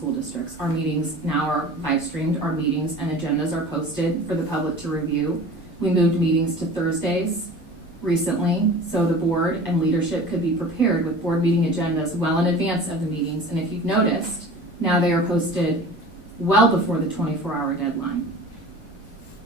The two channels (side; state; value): both; normal; correlation 0.40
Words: districts. Our meetings now are live streamed. Our meetings and agendas are posted for the public to review. We moved meetings to Thursdays recently so the board and leadership could be prepared with board meeting agendas well in advance of the meetings. And if you've noticed, now they are posted well before the 24-hour deadline.